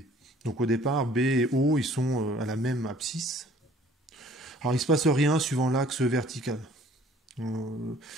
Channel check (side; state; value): both; normal; correlation 0.55